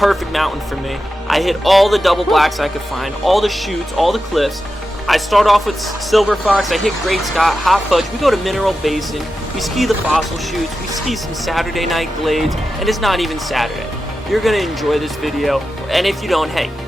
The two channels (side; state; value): both; normal; correlation 0.91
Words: mountain for me. I hit all the double blacks I could find, all the chutes, all the cliffs. I start off with Silver Fox, I hit Great Scott, Hot Fudge, we go to Mineral Basin, we ski the fossil chutes, we ski some Saturday night glades, and it's not even Saturday. You're gonna enjoy this video, and if you don't, hey,